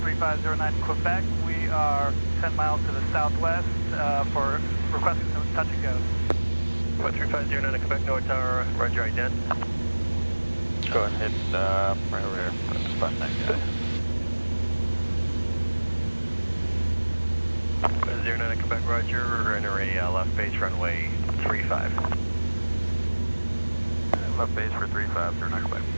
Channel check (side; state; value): both; inverted; correlation -1.00